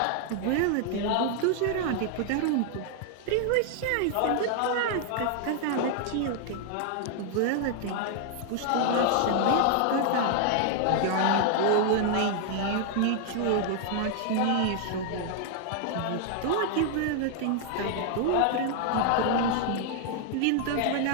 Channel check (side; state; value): both; different; correlation 0.00